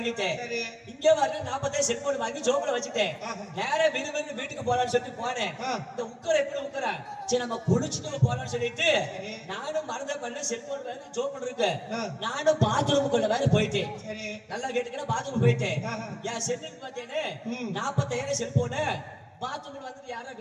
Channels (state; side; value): identical; both; correlation 1.00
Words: சரி. இங்க வர 40,000 செல்போன் வாங்கி ஜோப்ல வச்சுட்டேன். நேரா விறுவிறு வீட்டுக்கு போலான்னு சொல்லிட்டு போனேன். இந்த உக்கர எப்படி உக்கரா சரி நம்ம குளிச்சுட்டு போலான்னு சொல்லிட்டு நானும் மறந்த பண்ண செல்போன் வேற ஜோப்ல இருக்கு. நானும் பாத்ரூமுக்குள்ள வேற போயிட்டேன். சரி. நல்லா கேட்டுக்கிற பாத்ரூம் போயிட்டேன். என் செல்லுக்கு பார்த்தேன்னு 40,000 செல்போனு பாத்ரூம்ல வந்துட்டு யாரோ